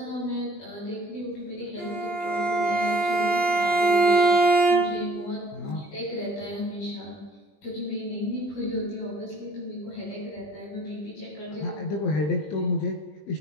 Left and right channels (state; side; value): late; right; 20 ms